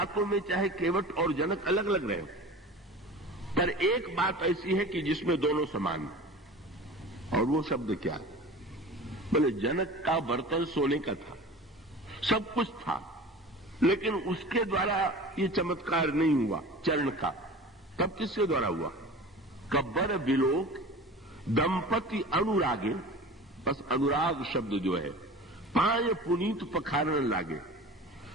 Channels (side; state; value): both; normal; correlation 0.37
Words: में चाहे केवट और जनक अलग अलग रहे, पर एक बात ऐसी है कि जिसमें दोनों समान हैं, और वो शब्द क्या है, बोले जनक का बर्तन सोने का था, सब कुछ था, लेकिन उसके द्वारा ये चमत्कार नहीं हुआ चरण का। तब किसके द्वारा हुआ, कब्बर बिलोक दंपति अनुरागे, बस अनुराग शब्द जो है, पाय पुनीत पखारन लागे।